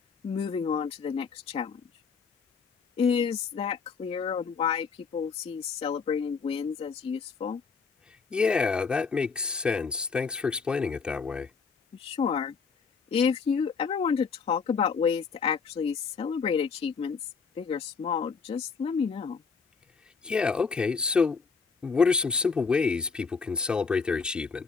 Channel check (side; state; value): right; quieter; 5.3 dB